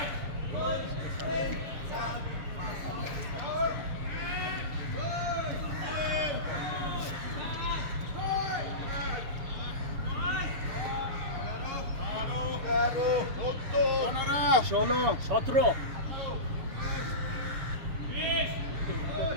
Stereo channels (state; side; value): late; left; 6.9 ms